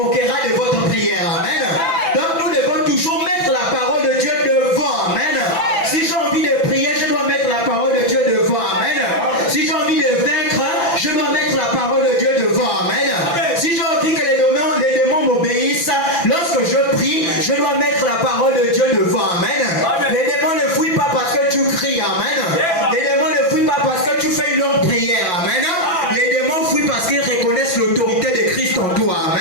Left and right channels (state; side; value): late; right; 6.0 ms